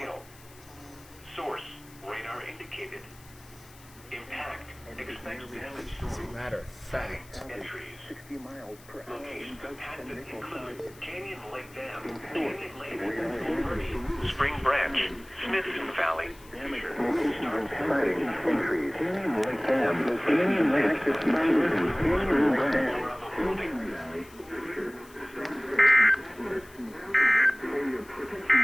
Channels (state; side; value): noise; left; hiss, 24 dB below the sound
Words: Source, radar indicated. Impact, expect damage to As a matter of fact, entries. 60 miles per hour. Locations impacted include Canyon Lake Dam, Canyon Lake, Murray, Spring Branch, Smithson Valley. Exciting entries. Canyon Lake Dam, Canyon Lake, Canyon Lake.